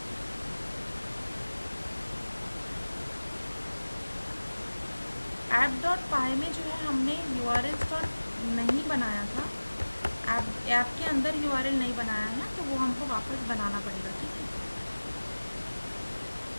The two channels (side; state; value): both; inverted; correlation -1.00